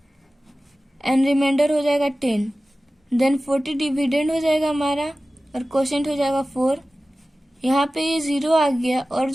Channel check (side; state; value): both; normal; correlation 0.96